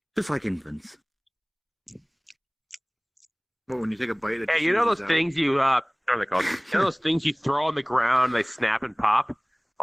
just like infants. Well, when you take a bite, it Hey, just you know those oozes out. things you what are they called? You know those things you throw on the ground, they snap and pop?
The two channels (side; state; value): both; identical; correlation 1.00